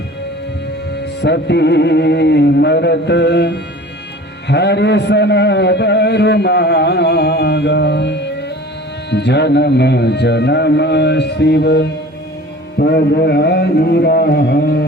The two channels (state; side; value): normal; both; correlation 0.42